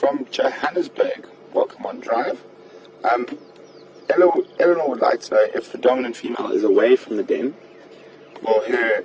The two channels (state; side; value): identical; both; correlation 1.00